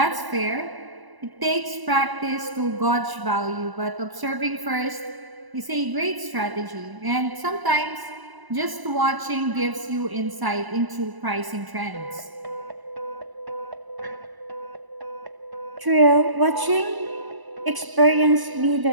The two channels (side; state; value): left; late; 1.0 ms